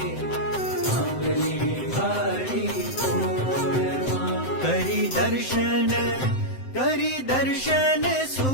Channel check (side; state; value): right; late; 7.7 ms